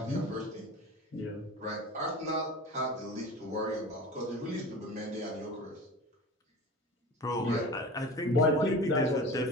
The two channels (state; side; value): normal; both; correlation 0.35